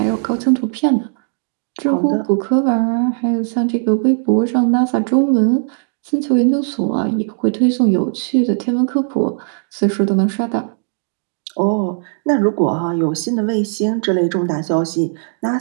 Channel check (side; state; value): left; silent; digital silence